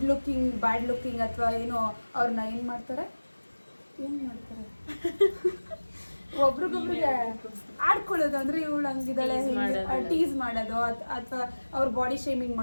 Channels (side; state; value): both; inverted; correlation -1.00